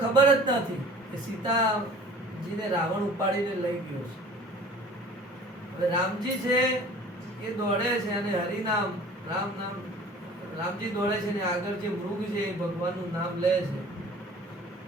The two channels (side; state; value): both; normal; correlation 0.46